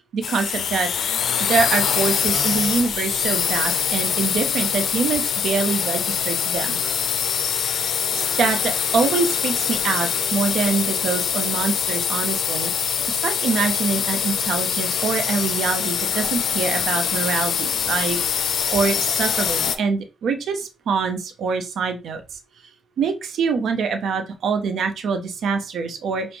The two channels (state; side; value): normal; both; correlation 0.65